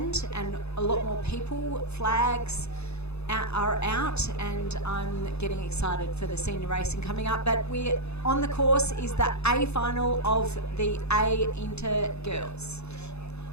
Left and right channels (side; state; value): right; late; 0.80 ms